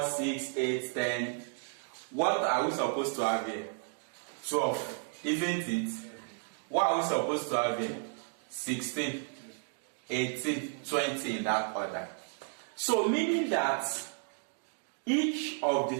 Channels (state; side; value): silent; left; 56 dB below the other